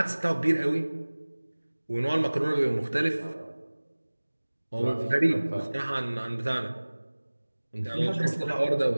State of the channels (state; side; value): inverted; both; correlation -1.00